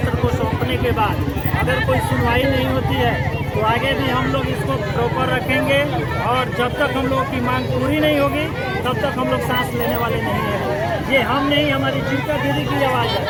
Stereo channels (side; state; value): both; identical; correlation 1.00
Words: को सौंपने के बाद अगर कोई सुनवाई नहीं होती है तो आगे भी हम लोग इसको प्रॉपर रखेंगे और जब तक हम लोगों की मांग पूरी नहीं होगी तब तक हम लोग सांस लेने वाले नहीं हैं। ये हम नहीं, हमारी जीविका दीदी की आवाज़ है,